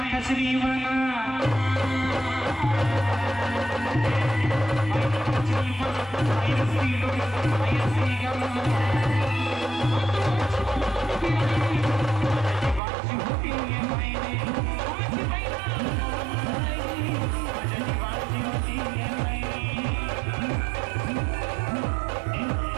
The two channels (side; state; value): left; drops out; at 12.8 s